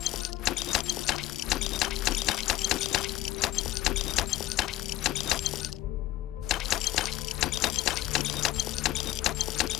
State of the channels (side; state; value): right; quieter; 15.1 dB